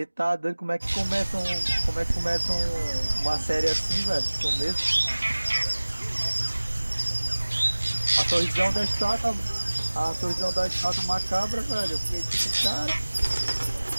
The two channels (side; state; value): both; inverted; correlation -1.00